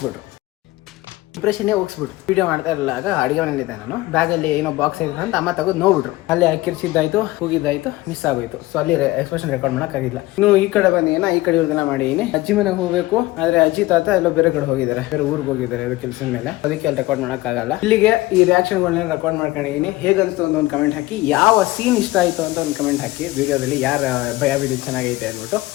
ಇಂಪ್ರೆಷನ್ನೇ ಹೋಗ್ಸ್ಬಿಟ್ರು ವಿಡಿಯೋ ಮಾಡ್ತಾ ಇರಲಾಗ ಅಡಿಗೆ ಮನೆಯಲ್ಲಿದ್ದೆ ನಾನು ಬ್ಯಾಗಲ್ಲಿ ಏನೋ ಬಾಕ್ಸ್ ಇದೆ ಅಂತ ಅಮ್ಮ ತಗೊಂಡು ನೋಡ್ಬಿಟ್ರು ಅಲ್ಲಿ ಕಿರ್ಚಿದ್ದಾಯ್ತು ಹೋಗಿದ್ದಾಯ್ತು ಮಿಸ್ ಆಗೋಯ್ತು ಸೊ ಅಲ್ಲಿ ಎಕ್ಸ್ಪ್ರೆಷನ್ ರೆಕಾರ್ಡ್ ಮಾಡೋಕ್ಕಾಗಿಲ್ಲ ಇನ್ನು ಈ ಕಡೆ ಬಂದಿನ ಈ ಕಡೆ ಇವ್ರದನ್ನ ಮಾಡಿದೀನಿ ಅಜ್ಜಿ ಮನೆಗೆ ಹೋಗ್ಬೇಕು ಆದ್ರೆ ಅಜ್ಜಿ ತಾತ ಎಲ್ಲೋ ಬೇರೆ ಕಡೆ ಹೋಗಿದ್ದಾರೆ ಬೇರೆ ಊರಿಗೆ ಹೋಗಿದ್ದಾರೆ ಅದು ಕೆಲಸದ ಮೇಲೆ ಅದಕ್ಕೆ ಅಲ್ಲಿ ರೆಕಾರ್ಡ್ ಮಾಡೋಕ್ಕಾಗಲ್ಲ ಇಲ್ಲಿಗೆ ಈ ರಿಯಾಕ್ಷನ್ಗಳನ್ನ ರೆಕಾರ್ಡ್ ಮಾಡ್ಕೊಂಡಿದ್ದೀನಿ ಹೇಗಂತ ಒಂದು ಕಮೆಂಟ್ ಹಾಕಿ ಯಾವ ಸೀನ್ ಇಷ್ಟ ಆಯ್ತು ಅಂತ ಒಂದು ಕಮೆಂಟ್ ಹಾಕಿ ವಿಡಿಯೋದಲ್ಲಿ ಯಾರ ಭಯ ವಿಡಿಯೋ ಚೆನ್ನಾಗೈತೆ ಅಂದ್ಬಿಟ್ಟು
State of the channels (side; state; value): right; quieter; 19.0 dB